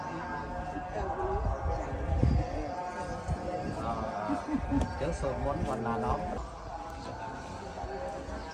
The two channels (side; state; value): both; identical; correlation 1.00